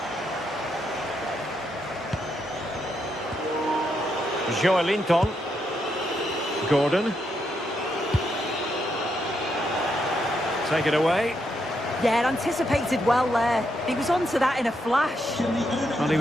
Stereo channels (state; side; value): normal; both; correlation 0.80